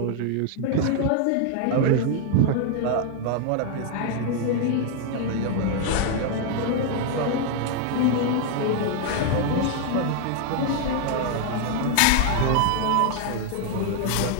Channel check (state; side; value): different; both; correlation 0.00